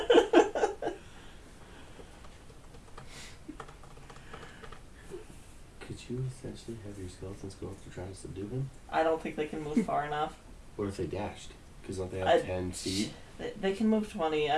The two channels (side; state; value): both; identical; correlation 1.00